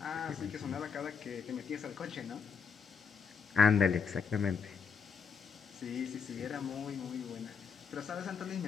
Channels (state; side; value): quieter; right; 6.1 dB